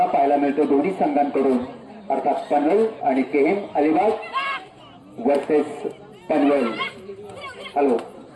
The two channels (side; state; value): both; identical; correlation 1.00